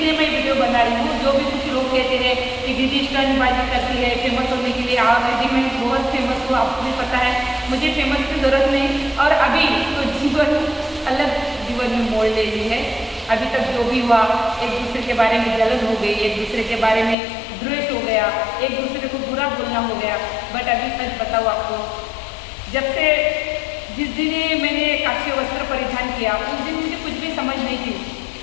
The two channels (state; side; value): drops out; right; at 17.2 s